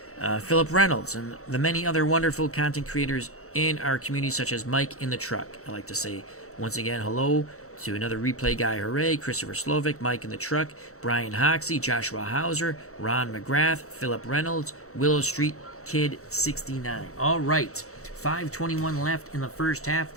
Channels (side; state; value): right; late; 0.64 ms